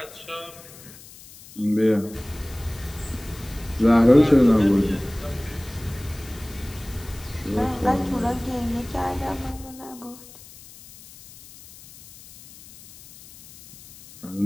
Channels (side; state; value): left; noise; hiss, 20 dB below the sound